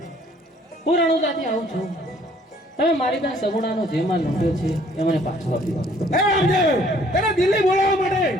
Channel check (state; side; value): normal; both; correlation 0.60